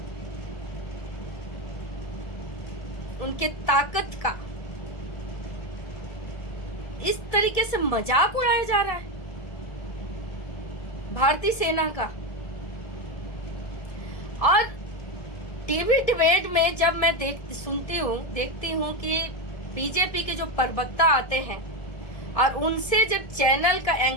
उनके ताकत का इस तरीके से मजाक उड़ाया जा रहा है भारतीय सेना का। और टीवी डिबेट में जब मैं देखती हूँ कि बीजेपी के जो प्रवक्ता आते हैं और उनसे जब चैनल का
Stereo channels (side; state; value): right; late; 1.6 ms